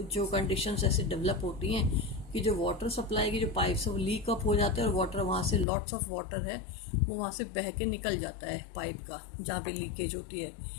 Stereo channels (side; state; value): right; drops out; at 5.7 s